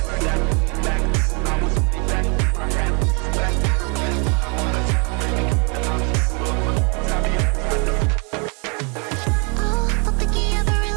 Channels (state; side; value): quieter; left; 33.9 dB